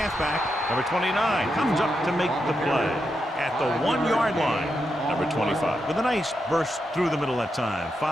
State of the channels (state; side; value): normal; both; correlation 0.85